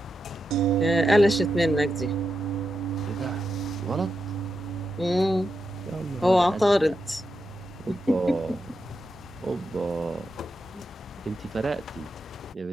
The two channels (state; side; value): normal; both; correlation 0.87